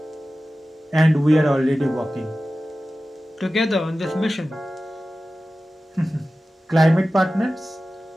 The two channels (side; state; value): both; normal; correlation 0.95